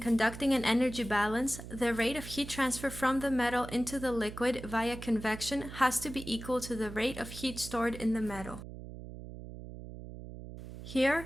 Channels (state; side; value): noise; right; hum, 12 dB below the sound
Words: an energy balance, the rate of heat transfer from the metal into the liquid via convection has to be equal to the rate of heat stored in the metal.